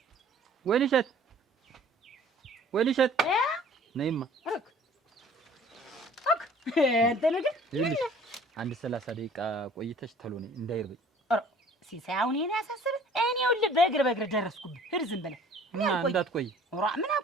ወይንሸት ነይማ አንተ ነገር አንድ 30 ደቂቃ ቆይተሽ ተሎ ነይ እንዳይርበኝ። ሲሳይ አሁን እኔ ያሳስብ እኔ ይኸውልህ በእግር ደረስኩብህ። ሂድ ዝም ብለህ እና እንዳትቆይ። ምን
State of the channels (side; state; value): both; normal; correlation 0.51